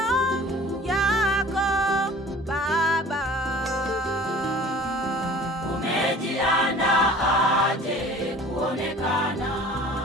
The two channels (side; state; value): both; normal; correlation 0.46